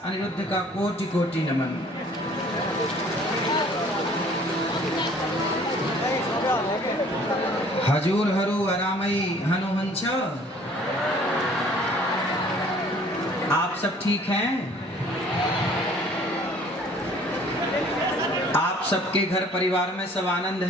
अनिरुद्ध का कोटि कोटि नमन। हजूर हरु अरामई हनुहंस। आप सब ठीक हैं? आप सबके घर परिवार में सब आनंद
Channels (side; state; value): both; normal; correlation 0.54